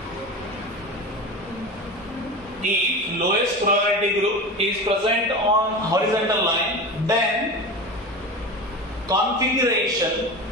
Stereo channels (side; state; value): both; normal; correlation 0.28